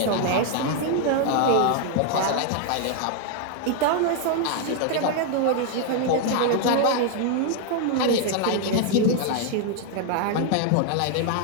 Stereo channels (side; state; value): both; different; correlation 0.00